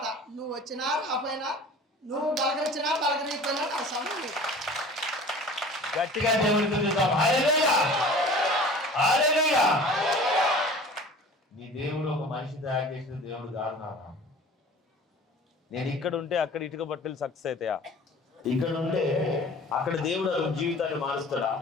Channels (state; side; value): normal; both; correlation 0.43